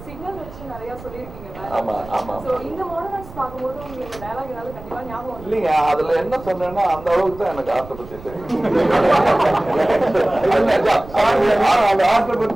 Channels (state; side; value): noise; right; rumble, 17 dB below the sound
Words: சிக்னல் வச்சு நிறைய சொல்லியிருக்கீங்க. இந்த மாடர்ன் ஆர்ட்ஸ் பார்க்கும்போது உங்களுக்கு டயலாக் ஏதாவது கண்டிப்பா ஞாபகம் இல்லைங்க. அதுல என்ன சொன்னேன்னா அந்த அளவுக்கு தான் எனக்கு ஆர்ட்டை பத்தி தெரியும். அந்த ஆர்ட்டை